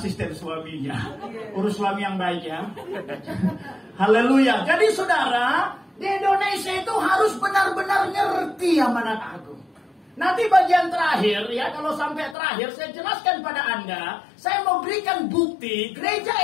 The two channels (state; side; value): drops out; right; at 12.4 s